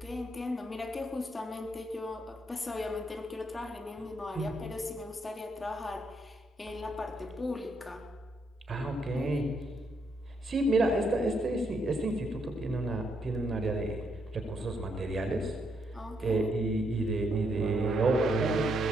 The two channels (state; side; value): normal; both; correlation 0.76